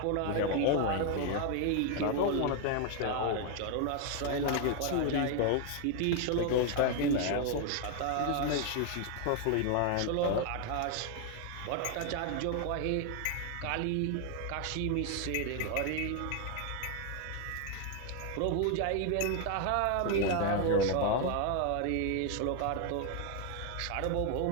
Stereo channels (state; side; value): different; both; correlation 0.00